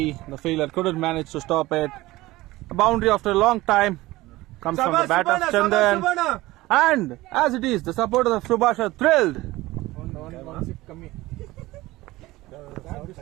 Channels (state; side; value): quieter; left; 18.7 dB